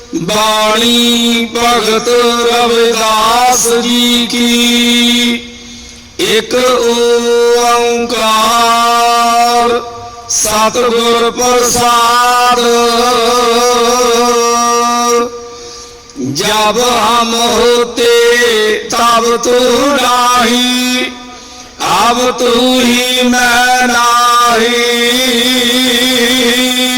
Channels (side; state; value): both; identical; correlation 1.00